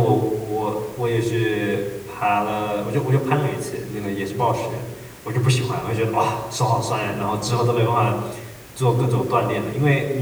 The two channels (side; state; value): both; identical; correlation 1.00